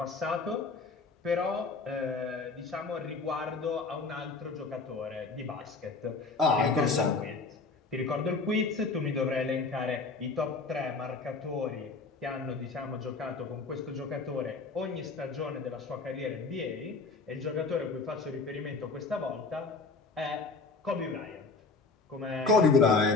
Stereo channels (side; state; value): right; quieter; 4.1 dB